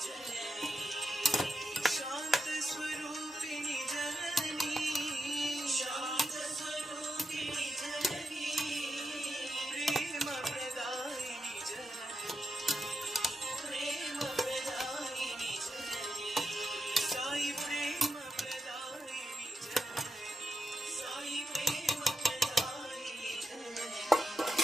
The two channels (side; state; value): both; normal; correlation 0.86